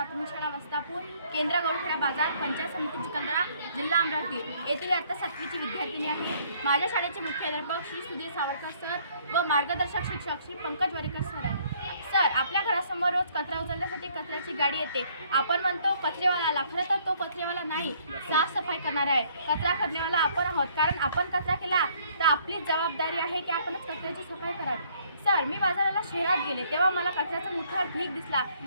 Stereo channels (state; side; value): inverted; both; correlation -0.63